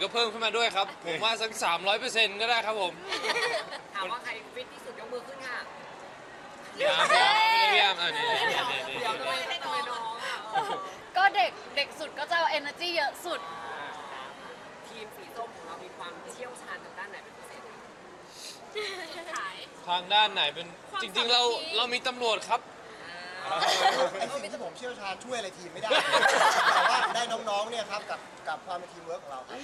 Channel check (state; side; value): identical; both; correlation 1.00